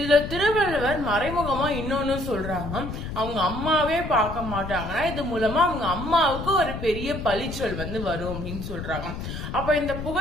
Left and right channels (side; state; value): left; noise; rumble, 7 dB below the sound